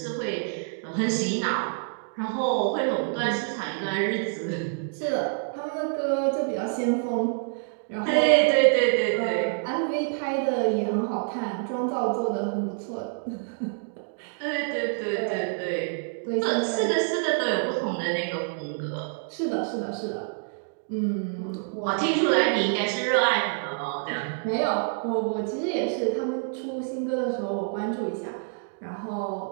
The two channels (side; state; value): left; silent; digital silence